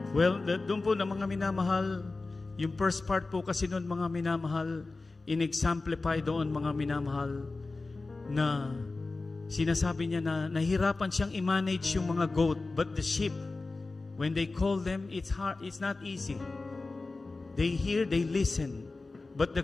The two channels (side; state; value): right; quieter; 3.5 dB